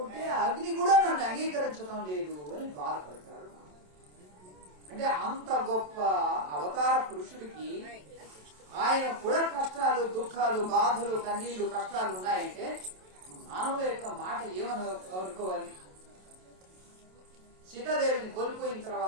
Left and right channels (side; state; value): left; late; 27 ms